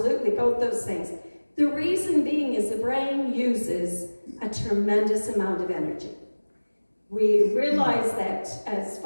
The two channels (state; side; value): inverted; both; correlation -1.00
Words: both those things. The reason being is the brain uses a tremendous amount of energy. We realize that as